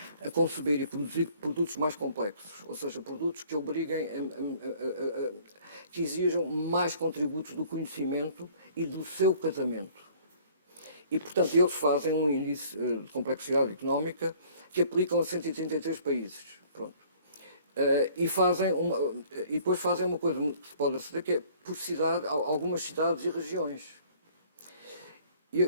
a conceber e produzir produtos mais complexos, ou seja, produtos que obriguem, que exijam mais contributos do conhecimento e do seu casamento. E, portanto, eles fazem um índice de complexidade económica que aplicam a 133 países. Pronto. E depois fazem uma coisa que se pode aceder, que é por cidade, algumas cidades e regiões.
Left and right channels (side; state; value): both; inverted; correlation -0.55